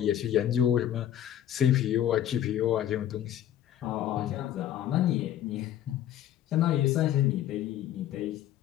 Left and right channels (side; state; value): right; quieter; 11.3 dB